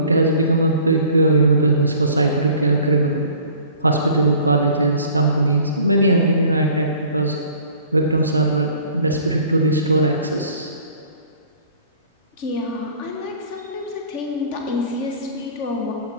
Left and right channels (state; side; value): inverted; both; correlation -0.50